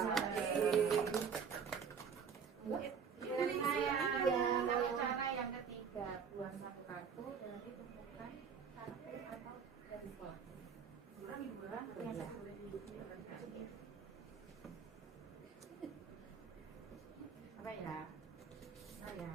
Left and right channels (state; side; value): quieter; left; 6.5 dB